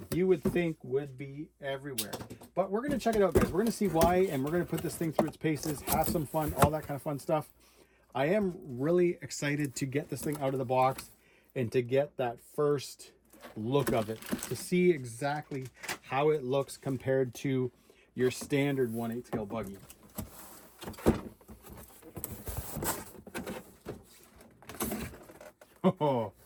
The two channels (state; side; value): identical; both; correlation 1.00